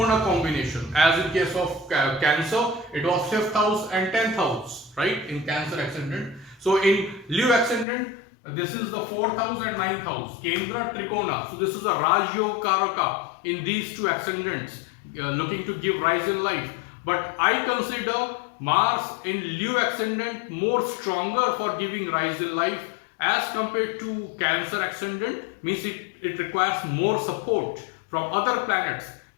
combination. As in case of Cancer, it was 5th house and 10th house, right? In Cancer ascendant. So in Leo ascendant, this is the 4th house and 9th house, Kendra, Trikona. So this is a Raj Yoga Karaka in these two ascendants, looking to give rise in life. But I consider Mars in Leo ascendant more stronger for giving rise in life as compared to Cancer ascendant. Means it requires more support from other planets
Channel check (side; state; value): right; drops out; at 7.9 s